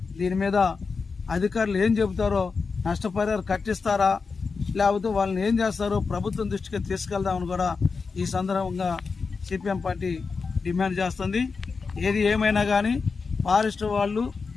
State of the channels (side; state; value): right; quieter; 4.8 dB